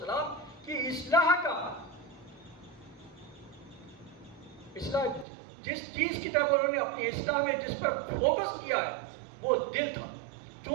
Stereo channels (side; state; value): left; drops out; at 5.2 s